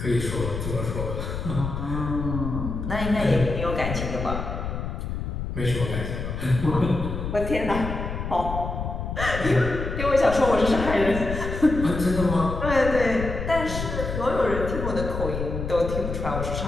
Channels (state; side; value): noise; left; rumble, 5 dB below the sound